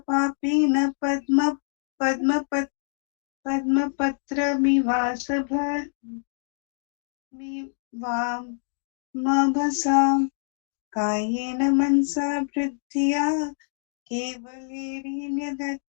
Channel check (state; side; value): silent; right; digital silence